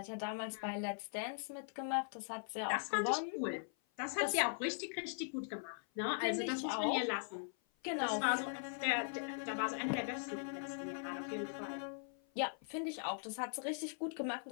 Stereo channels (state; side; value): silent; right; 51 dB below the other